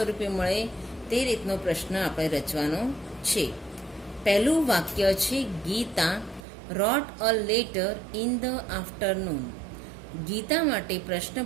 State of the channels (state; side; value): drops out; left; at 6.4 s